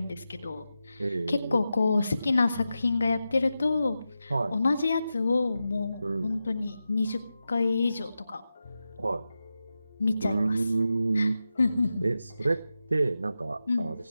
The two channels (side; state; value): both; inverted; correlation -0.91